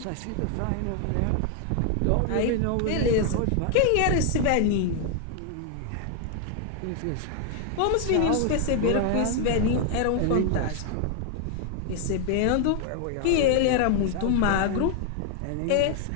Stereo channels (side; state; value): both; different; correlation 0.00